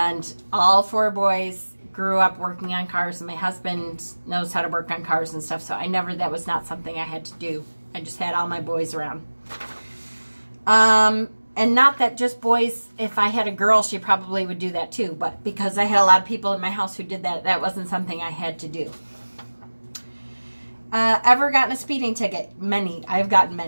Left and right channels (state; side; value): inverted; both; correlation -1.00